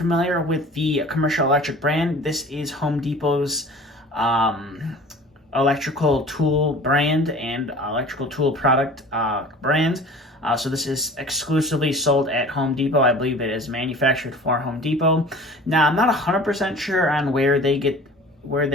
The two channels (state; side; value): normal; both; correlation 0.43